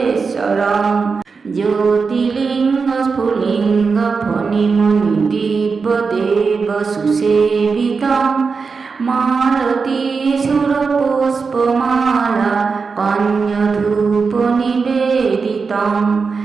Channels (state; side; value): quieter; left; 5.0 dB